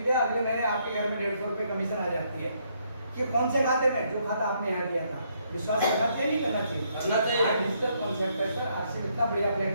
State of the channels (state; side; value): inverted; both; correlation -0.72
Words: लिया, अगले महीने आपके घर में 150 रुपए कमीशन आ जाती है। कि कौन से खाते में? जो खाता आपने यहाँ दिया था। विश्वास करना चाहिए, नहीं करना चाहिए? करना चाहिए। डिजिटल कॉन्सेप्ट है सर, आरसीएम इतना बढ़िया